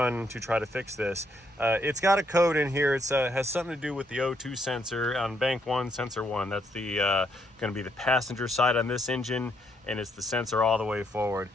to try to fix this. It's got a code in here. It's has something to do with the O2 sensor on bank 1, sensor 1. That's the going to be the passenger side on this engine, and it's the sensor all the way forward.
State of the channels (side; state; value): both; normal; correlation 0.73